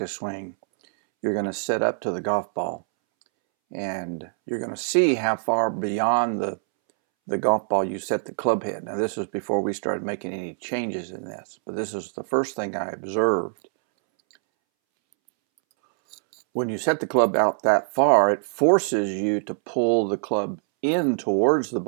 swing, you're going to set up to the golf ball, and you're going to see how far beyond the golf ball you set the club head. Now, this was before we started making any changes in this, but this is the first thing I observed. When you set the club out that far, it forces you to pull the club in towards the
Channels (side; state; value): left; silent; 62 dB below the other